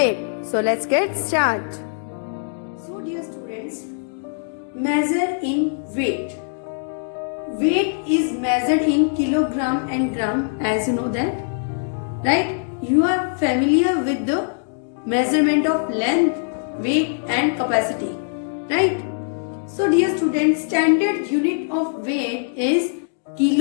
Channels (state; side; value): silent; right; digital silence